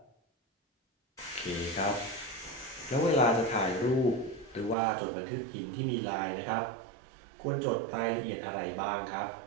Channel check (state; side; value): drops out; left; at 4.8 s